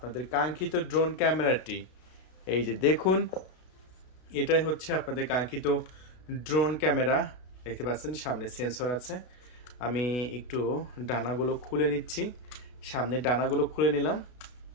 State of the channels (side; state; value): right; late; 32 ms